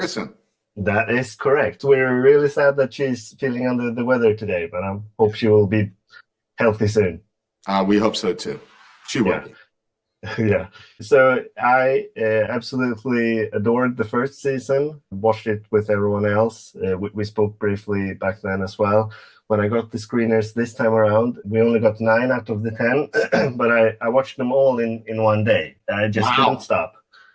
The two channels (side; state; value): both; identical; correlation 1.00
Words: that is correct. We're really sad that she's feeling under the weather today, but I hope she will be healthy soon. We hope so too. She will Yeah. be. Yeah. So I absolutely adored the first season, watched it with everyone else. We spoke briefly back then as well. When I got the screeners this time around, we only got 9 out of the 10, but I watched them all in one day. I just couldn't Wow. stop.